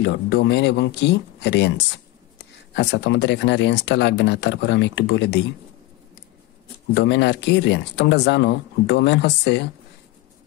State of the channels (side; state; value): right; quieter; 17.7 dB